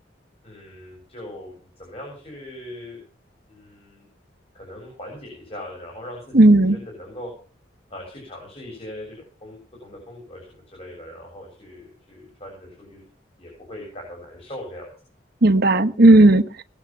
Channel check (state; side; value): normal; both; correlation 0.69